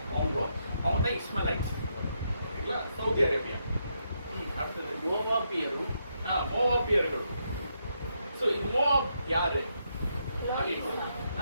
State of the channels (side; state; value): both; inverted; correlation -0.79